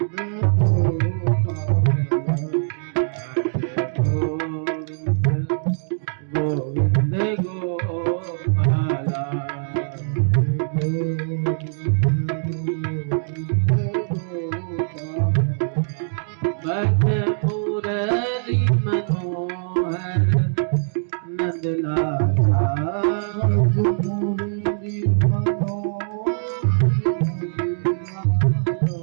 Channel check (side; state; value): left; silent; digital silence